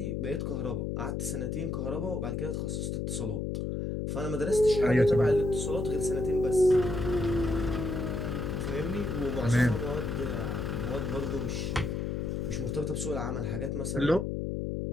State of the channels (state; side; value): noise; left; hum, 2 dB below the sound